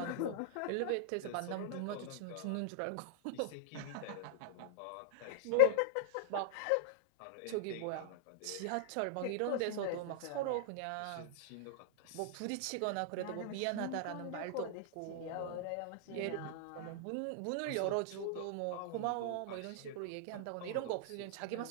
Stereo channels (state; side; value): different; both; correlation -0.01